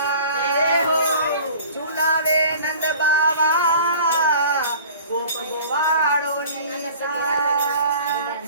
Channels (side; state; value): both; inverted; correlation -0.45